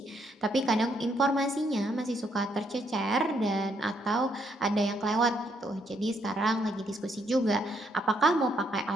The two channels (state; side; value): normal; both; correlation 0.73